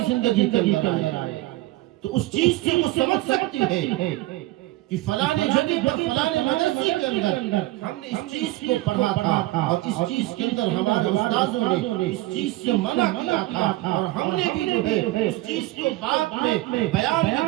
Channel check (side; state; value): left; quieter; 18.1 dB